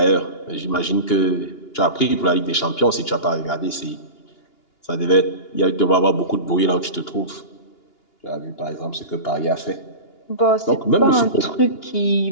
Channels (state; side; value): late; right; 2.8 ms